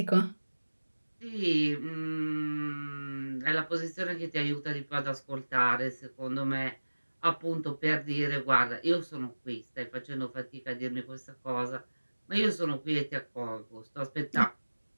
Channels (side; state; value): both; inverted; correlation -1.00